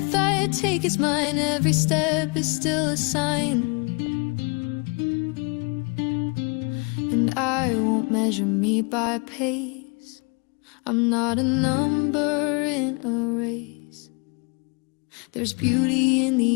I take is mine, every step is still a sign. And I won't measure me by pace, I'm not a number in a race. There's beauty in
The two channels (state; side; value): quieter; right; 31.8 dB